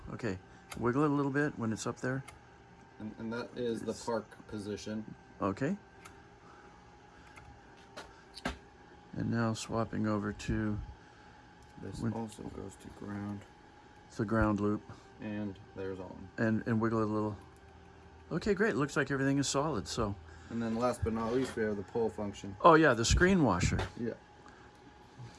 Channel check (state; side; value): identical; both; correlation 1.00